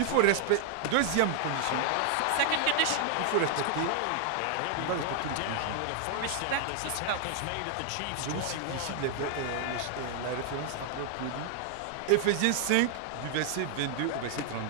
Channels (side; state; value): both; different; correlation 0.00